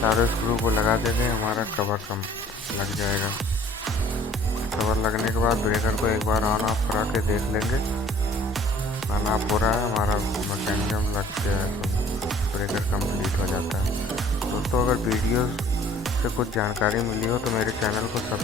स्क्रू को लगा देंगे, हमारा कवर कम लग जाएगा। कवर लगने के बाद ब्रेकर को एक बार ऑन ऑफ करा के देख लेंगे, ऑन ऑफ हो रहा है, हमारा मैकेनिज्म लग गया है, तो ब्रेकर कंप्लीट हो जाता है। दोस्तों, अगर वीडियो से कुछ जानकारी मिली हो तो मेरे चैनल को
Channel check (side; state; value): both; normal; correlation 0.53